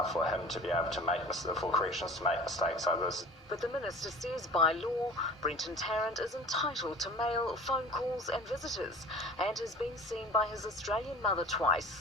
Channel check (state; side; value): normal; both; correlation 0.42